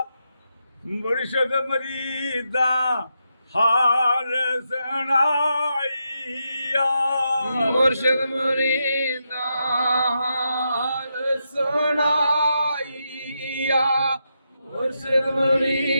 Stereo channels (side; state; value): both; inverted; correlation -0.84